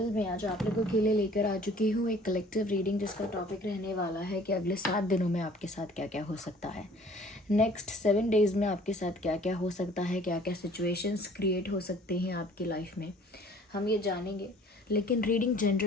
मैं आज आप लोगों के लिए लेकर आ चुकी हूँ एक कलेक्टिव रीडिंग जिसका टॉपिक रहने वाला है कि अगले 7 दिनों में आपके साथ क्या क्या हो सकता है। नेक्स्ट 7 डेज़ में आपके साथ क्या क्या हो सकता है, क्या क्या सिचुएशंस क्रिएट हो सकते हैं आपकी लाइफ में, हम ये जानेंगे। लेकिन रीडिंग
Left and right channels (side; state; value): both; normal; correlation 0.52